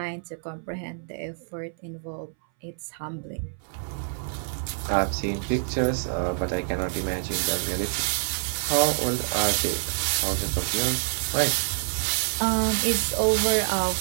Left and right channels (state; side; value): silent; left; 60 dB below the other